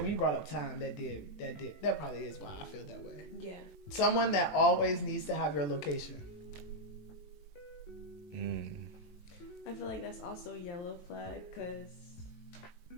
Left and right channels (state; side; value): late; right; 19 ms